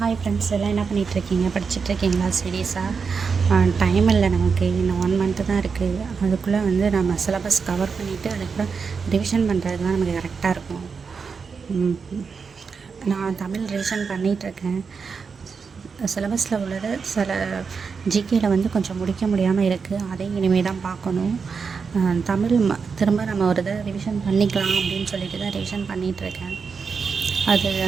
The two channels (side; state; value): left; quieter; 5.5 dB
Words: Hi friends, எல்லாம் என்ன பண்ணிகிட்ருக்கீங்க? படிச்சுட்ருக்கீங்களா? சீரியஸாக டைம் இல்லை நமக்கு. இன்னும் 1 மந்த்து தான் இருக்குது. அதுக்குள்ளே வந்து நம்ம சிலபஸ் கவர் பண்ணிவிட்டு அதுக்கப்புறம் ரிவிஷன் பண்ணுறதுக்கு தான் நமக்கு கரெக்டாக இருக்கும். நான் தமிழ் ரிவிஷன் பண்ணிகிட்ருக்கேன். சிலபஸில் உள்ளது சில ஜிகேயில் வந்து கொஞ்சம் முடிக்க முடியாமல் இருக்குது. அதையும் இனிமேல் தான் பார்க்கணும். தமிழ் திரும்ப நம்ம ஒரு இதை ரிவிஷன் பண்ணிக்கலாம் அப்படின்னு சொல்லிட்டு தான் ரிவிஷன் பண்ணிகிட்ருக்கேன். அது